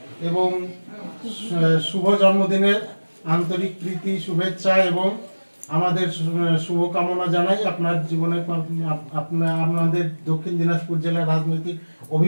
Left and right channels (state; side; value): inverted; both; correlation -1.00